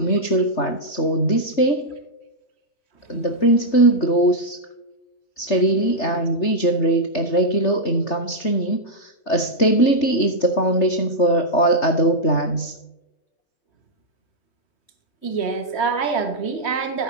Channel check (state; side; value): late; right; 3.3 ms